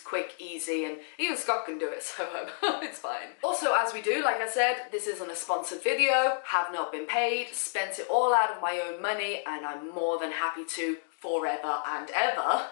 easy, and even Scott can do it, so it's fine. Also, as we do, like I said, this isn't a sponsored video, have not been paid, spent it all out of my own money, and I'm more than happy to forever and ever.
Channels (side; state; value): right; silent; digital silence